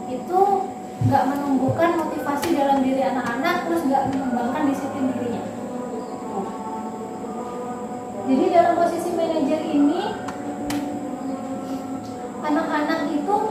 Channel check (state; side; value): identical; both; correlation 1.00